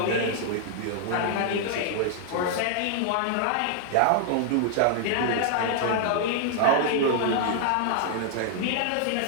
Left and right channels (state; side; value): different; both; correlation 0.00